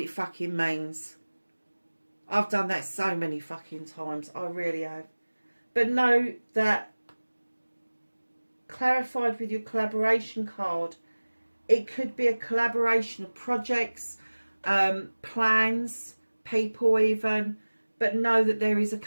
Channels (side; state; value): both; inverted; correlation -1.00